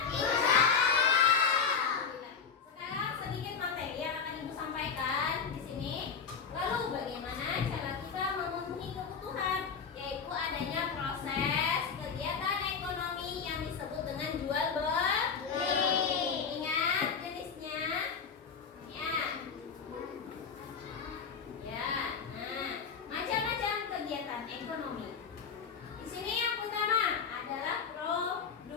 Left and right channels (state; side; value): quieter; right; 6.1 dB